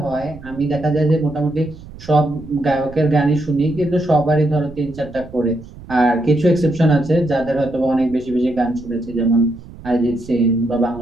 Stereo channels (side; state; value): right; noise; rumble, 17 dB below the sound